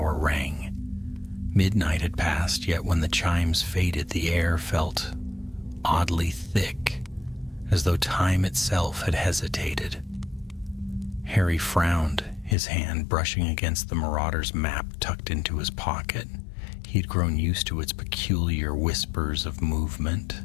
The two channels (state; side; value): drops out; right; at 12.6 s